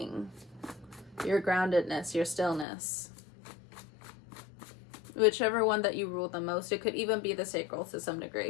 your groundedness, your stillness. Whichever one that you rule the most. It could even be the sacral to some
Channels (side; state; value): right; drops out; at 2.7 s